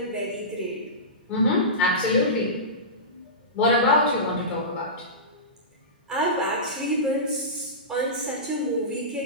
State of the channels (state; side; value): normal; both; correlation -0.20